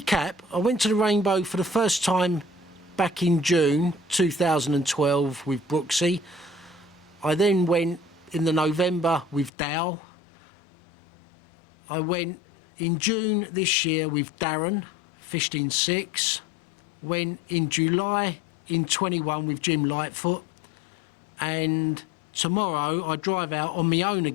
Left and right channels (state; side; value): drops out; right; at 9.5 s